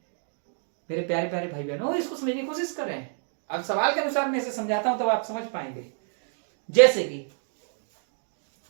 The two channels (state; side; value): silent; left; 59 dB below the other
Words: मेरे प्यारे प्यारे भाई बहनों, इसको समझने की कोशिश करें। अब सवाल के अनुसार मैं इसे समझाता हूं तब आप समझ पाएंगे। जैसे कि